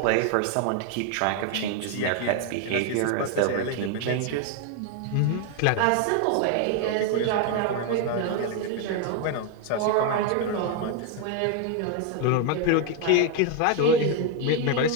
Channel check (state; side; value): different; both; correlation 0.01